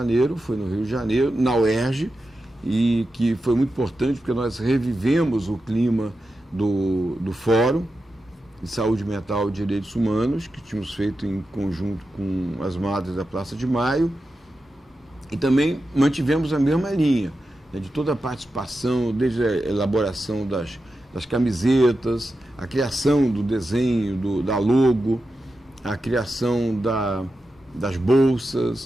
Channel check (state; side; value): normal; both; correlation 0.90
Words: na UERJ, e que foi muito importante porque nós revivemos o clima do Fórum de Saúde Mental e Direitos Humanos, que tínhamos feito em conjunto com as Madres da Praça de Maio, e também mantivemos a mesma linha, né, de toda a participação, desde a elaboração das camisetas, a criação do desenho, da logo, a criação das